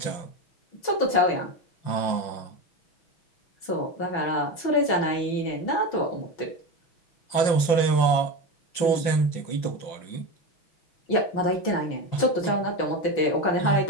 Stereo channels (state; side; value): late; right; 5.8 ms